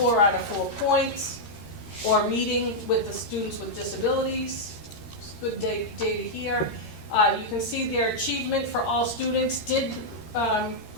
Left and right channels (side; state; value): right; late; 13 ms